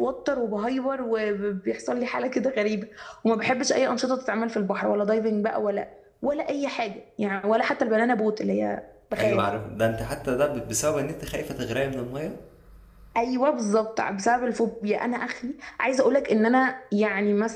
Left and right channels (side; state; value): both; identical; correlation 1.00